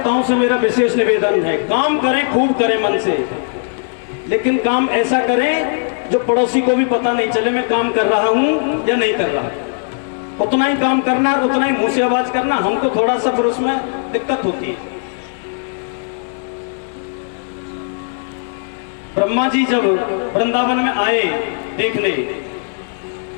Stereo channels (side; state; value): right; silent; 66 dB below the other